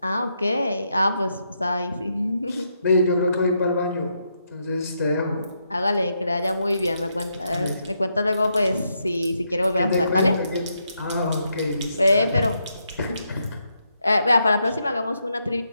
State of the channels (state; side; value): inverted; both; correlation -0.80